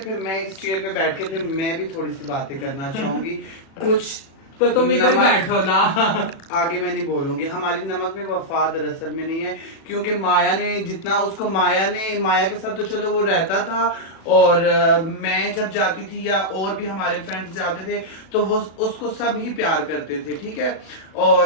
मैं इस चेयर पे बैठ के फिर मैं भी थोड़ी सी बातें करना चाहूंगी। कुछ तो तुम इधर बैठो ना। आगे मैं नहीं बोलूंगी। हमारी नमक में वफा दरअसल में नहीं है, क्योंकि माया ने जितना उसको माया के साथ तो चलो वो रहता था, और मैं जब जाती थी या और भी हमारे फ्रेंड्स जाते थे तो वो उसको सब ही प्यार करते थे, ठीक है।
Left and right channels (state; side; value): late; right; 36 ms